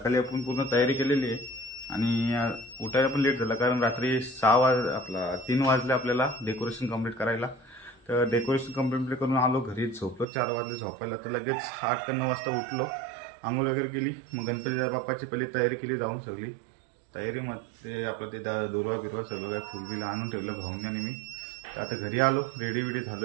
आपण पूर्ण तयारी केलेली आहे आणि उठायला पण लेट झाला, कारण रात्री 3 वाजले आपल्याला डेकोरेशन कंप्लीट करायला। तर डेकोरेशन कंप्लीट करून आलो घरी, झोपलो 4 वाजले झोपायला। तर लगेच 8 का 9 वाजता उठलो, आंघोळ वगैरे केली, मग गणपती बाप्पाची पहिली तयारी केली जाऊन सगळी। तयारीमध्ये आपलं ते दुर्वा बिरवा सगळं काय फुलबिल आणून ठेवलं भाऊंनी आणि मी। तर आता घरी आलो, रेडी वेडी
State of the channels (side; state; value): left; drops out; at 10.2 s